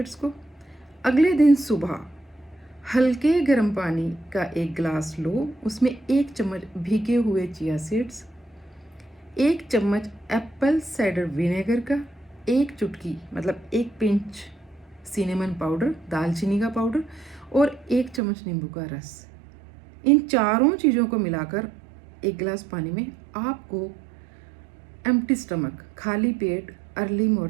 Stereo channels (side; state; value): left; drops out; at 18.2 s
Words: को। अगले दिन सुबह हल्के गर्म पानी का एक गिलास लो, उसमें 1 चम्मच भीगे हुए चिया सीड्स, 1 चम्मच एप्पल साइडर विनेगर का, 1 चुटकी मतलब 1 पिंच सिनेमन पाउडर, दालचीनी का पाउडर और 1 चम्मच नींबू का रस। इन चारों चीज़ों को मिलाकर एक गिलास पानी में आपको एम्प्टी स्टमक, खाली पेट, अर्ली